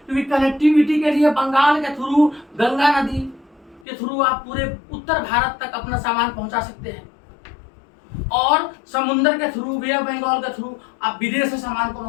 क्योंकि कनेक्टिविटी के लिए बंगाल के थ्रू, गंगा नदी के थ्रू आप पूरे उत्तर भारत तक अपना सामान पहुंचा सकते हैं, और समुद्र के थ्रू, वे ऑफ बंगाल के थ्रू आप विदेश से सामान को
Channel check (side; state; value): right; drops out; at 3.9 s